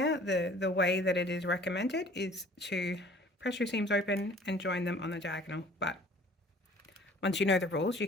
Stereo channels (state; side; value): normal; both; correlation 0.51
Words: The way that it is recommended is to press your seams open and join them on the diagonal, but once you know the rules, you